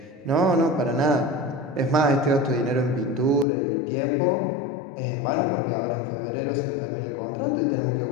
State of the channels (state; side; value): drops out; right; at 3.5 s